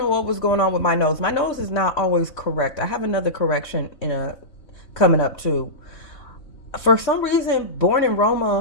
what was going on with my nose. My nose is not always correct. I have another correction coming up too. For some reason, Born in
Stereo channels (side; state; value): right; late; 3.3 ms